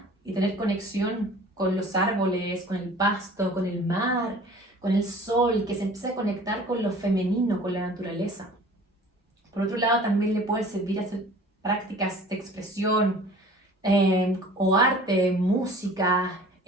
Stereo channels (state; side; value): normal; both; correlation 0.47